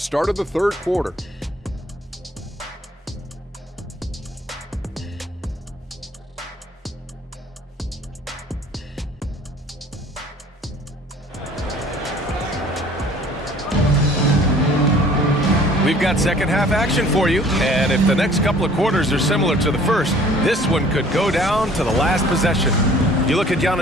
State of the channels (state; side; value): normal; both; correlation 0.52